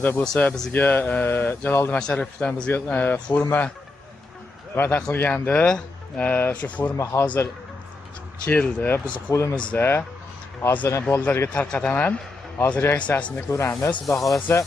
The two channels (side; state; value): right; quieter; 3.3 dB